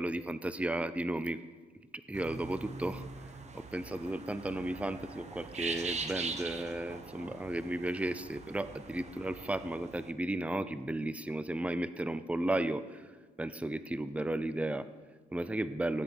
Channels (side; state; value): both; normal; correlation 0.87